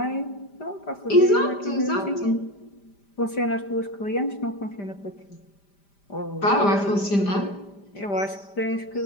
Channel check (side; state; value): right; late; 5.0 ms